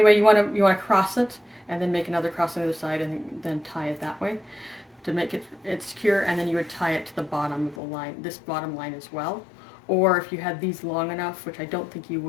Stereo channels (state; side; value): drops out; right; at 7.8 s